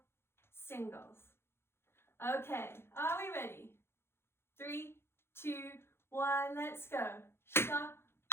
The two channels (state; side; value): late; right; 0.12 ms